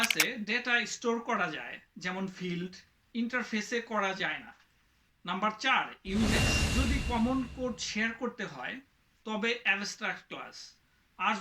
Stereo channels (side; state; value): both; identical; correlation 1.00